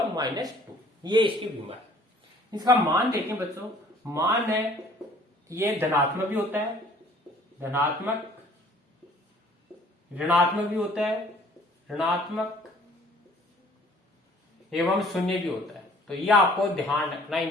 -2, ये इसकी विमा है। इसका मान देखें बच्चों, मान है ये धनात्मक भी होता है, धनात्मक, ऋणात्मक भी होता है, ऋणात्मक एवं शून्य भी होता है। तो ये आपको ध्यान रखना,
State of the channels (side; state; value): both; normal; correlation 0.55